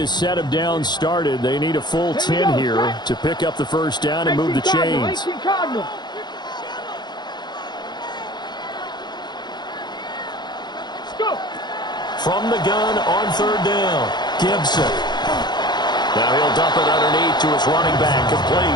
set of downs started, they need a full 10 here to pick up the first down and move the chains. From the gun on third down, Gibson. Now he'll dump it underneath to his running back,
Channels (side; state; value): right; late; 0.21 ms